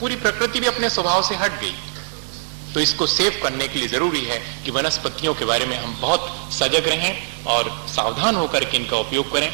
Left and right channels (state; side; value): silent; left; digital silence